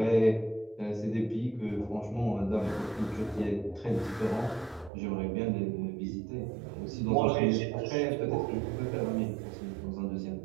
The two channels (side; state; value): left; drops out; at 4.9 s